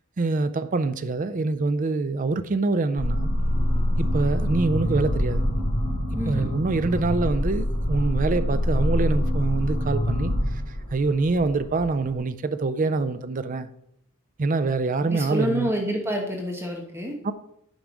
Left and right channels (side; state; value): both; normal; correlation 0.76